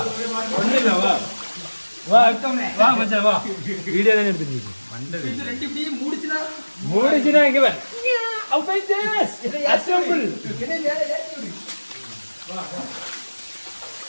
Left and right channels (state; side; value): inverted; both; correlation -1.00